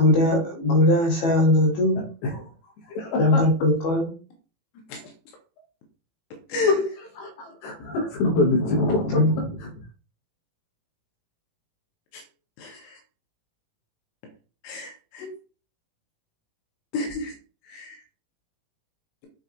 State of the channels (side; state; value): right; late; 19 ms